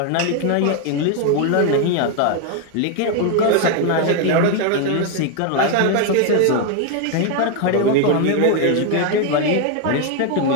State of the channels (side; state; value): both; different; correlation 0.01